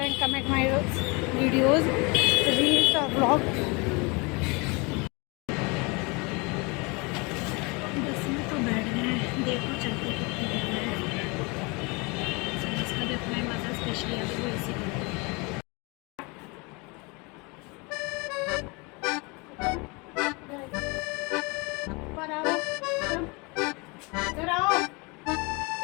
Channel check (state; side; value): quieter; right; 28.6 dB